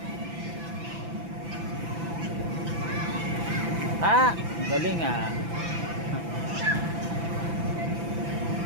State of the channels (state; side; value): late; left; 6.0 ms